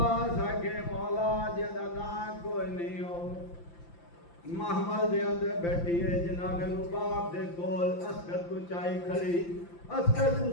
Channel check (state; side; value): late; right; 5.8 ms